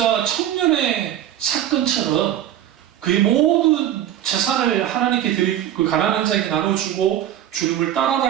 청년의 사건처럼 그의 모든 재산을 하나님께 드리고 그 가난한 자에게 나눠주고 주님을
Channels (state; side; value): quieter; left; 11.5 dB